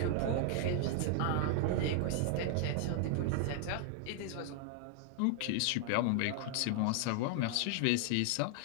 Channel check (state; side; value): different; both; correlation 0.00